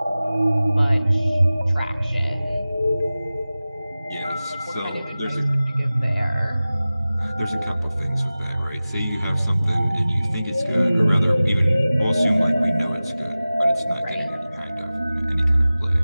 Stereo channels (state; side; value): inverted; both; correlation -0.97